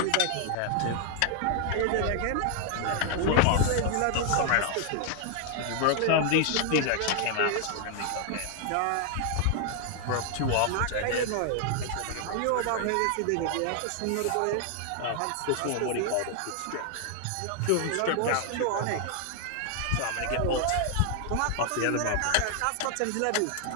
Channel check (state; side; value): different; both; correlation 0.00